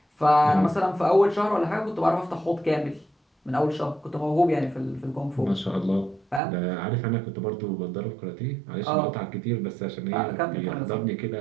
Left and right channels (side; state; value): left; drops out; at 6.4 s